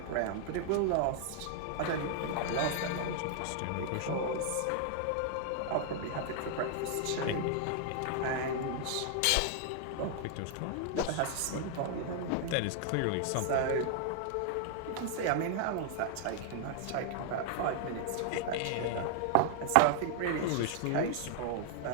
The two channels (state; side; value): different; both; correlation 0.00